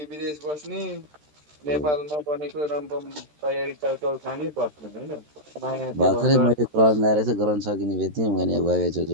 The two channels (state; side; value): late; left; 13 ms